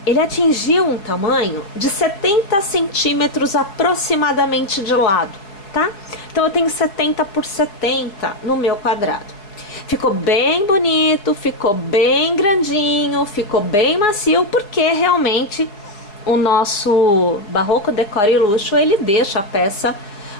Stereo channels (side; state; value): right; late; 4.8 ms